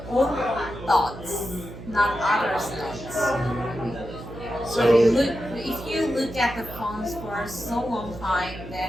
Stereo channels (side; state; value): right; noise; hum, 13 dB below the sound